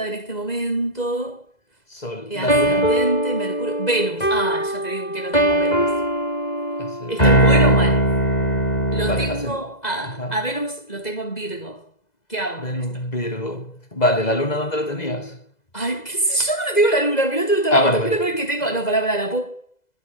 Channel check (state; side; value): late; right; 2.0 ms